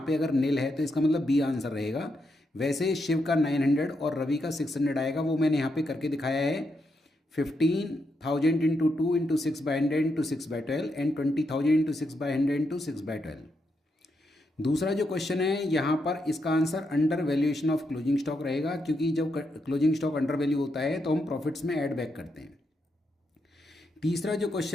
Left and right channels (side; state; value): both; normal; correlation 0.81